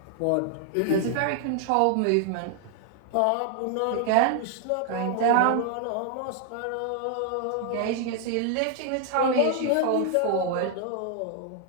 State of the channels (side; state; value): both; different; correlation 0.00